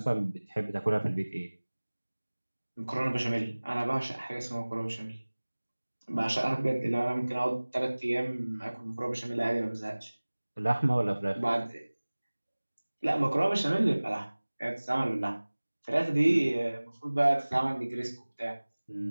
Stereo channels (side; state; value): both; inverted; correlation -1.00